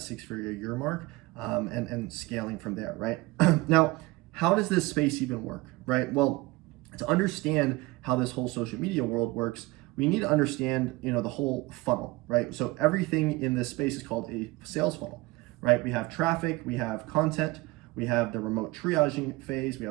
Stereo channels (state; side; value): quieter; left; 21.4 dB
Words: 6-figure a year mark, and scaling from there, right? Now, how does this space even work, right? Well, to understand how this whole social media world works, we need to understand, the whole funnel, right? So everything in this space is called a sales funnel, right? We have traffic, we have content, we have the remote triaging phase, we